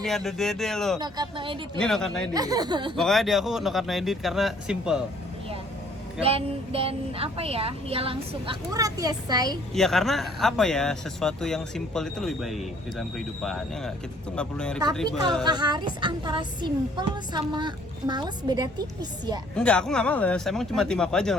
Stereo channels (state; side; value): normal; both; correlation 0.60